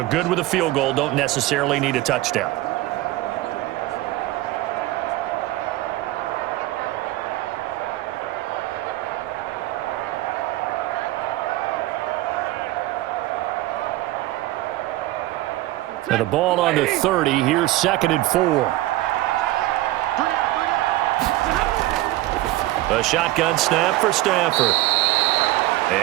good with a field goal. Don't necessarily need a touchdown. And the ball on the 30. Here's 2nd and 4. A shotgun snap for Stafford.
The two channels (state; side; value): quieter; left; 16.9 dB